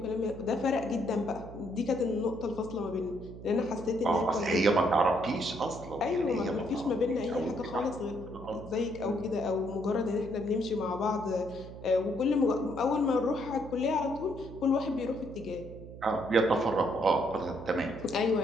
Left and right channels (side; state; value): right; noise; hum, 14 dB below the sound